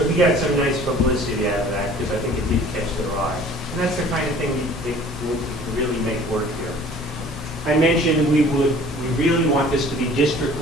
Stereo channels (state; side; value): normal; both; correlation 0.49